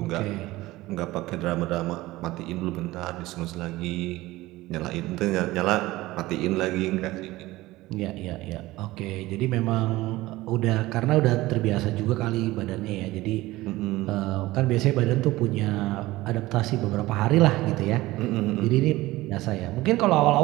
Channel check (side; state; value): left; quieter; 18.4 dB